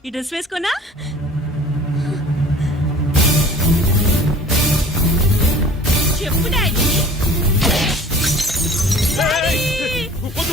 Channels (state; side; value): normal; both; correlation 0.47